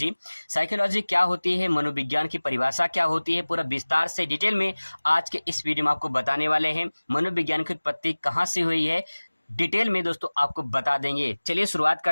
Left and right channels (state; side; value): inverted; both; correlation -1.00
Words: साइकोलॉजी क्या होती है, मनोविज्ञान की परिभाषा क्या होती है, पूरा विस्तार से डिटेल में आज के इस वीडियो में आपको बताने वाले हैं। मनोविज्ञान की उत्पत्ति कहाँ से हुई है, डिटेल में दोस्तों आपको बता देंगे। चलिए शुरुआत